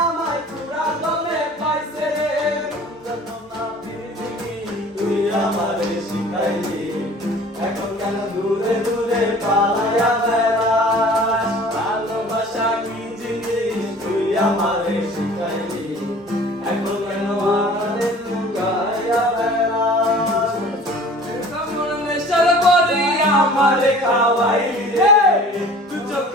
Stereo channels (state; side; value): normal; both; correlation 0.46